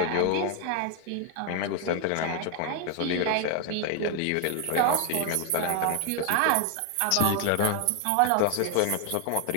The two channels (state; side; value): different; both; correlation 0.01